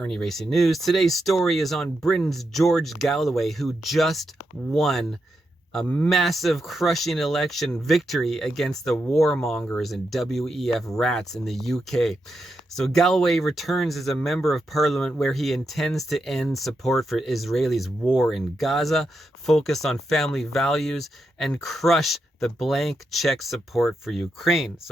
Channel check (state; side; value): normal; both; correlation 0.85